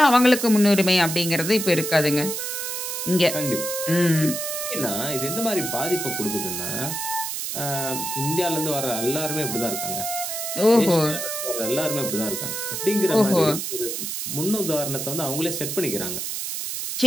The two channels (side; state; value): right; noise; hiss, 4 dB below the sound